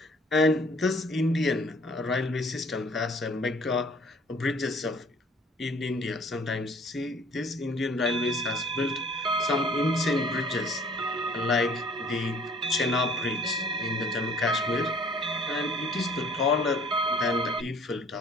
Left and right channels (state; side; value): normal; both; correlation 0.54